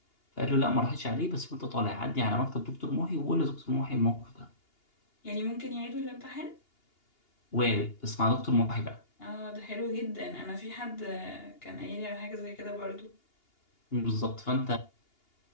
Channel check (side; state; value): right; late; 2.8 ms